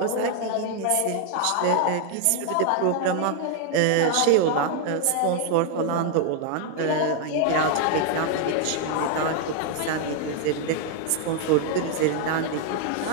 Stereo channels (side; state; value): both; different; correlation 0.01